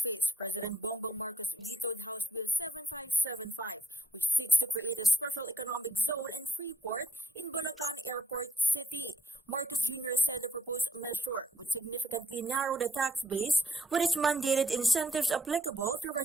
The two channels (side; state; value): both; normal; correlation 0.69